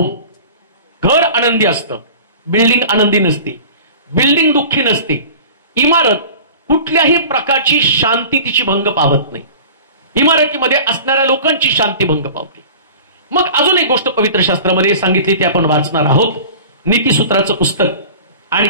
घर आनंदी असतं, बिल्डिंग आनंदी नसते, बिल्डिंग दुःखी नसते, इमारत कुठल्याही प्रकारची शांती तिची भंग पावत नाही, इमारतीमध्ये असणाऱ्या लोकांची शांती भंग पावते. मग अजून एक गोष्ट पवित्र शास्त्रामध्ये सांगितली, ती आपण वाचणार आहोत. नीतिसूत्राचं पुस्तक आणि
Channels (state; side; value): inverted; both; correlation -0.39